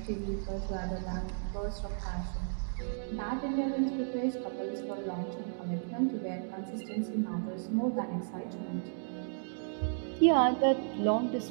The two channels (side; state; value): left; silent; digital silence